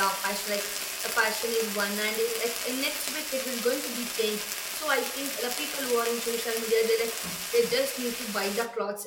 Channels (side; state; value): both; identical; correlation 1.00